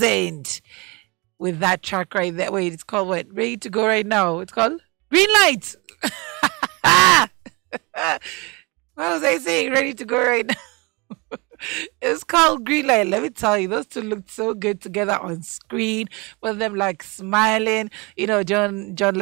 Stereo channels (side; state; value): left; quieter; 27.7 dB